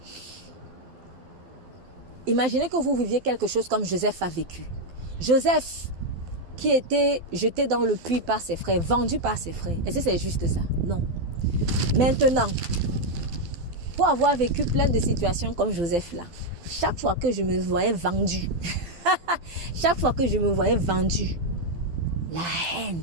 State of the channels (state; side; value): late; left; 12 ms